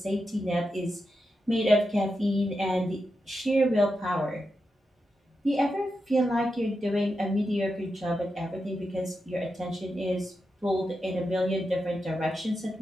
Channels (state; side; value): normal; both; correlation 0.88